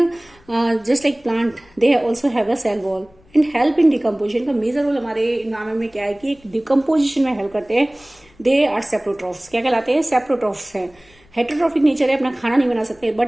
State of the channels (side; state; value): left; noise; rumble, 29 dB below the sound